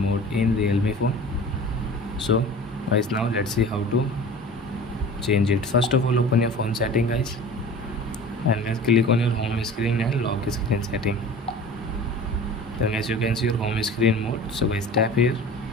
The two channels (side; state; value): both; normal; correlation 0.40